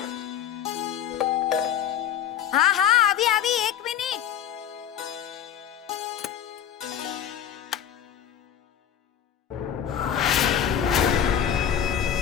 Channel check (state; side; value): quieter; right; 9.5 dB